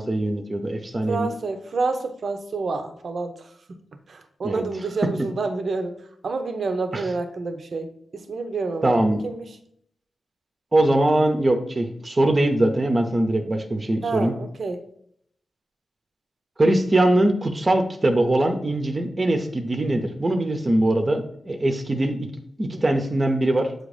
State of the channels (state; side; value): normal; both; correlation 0.94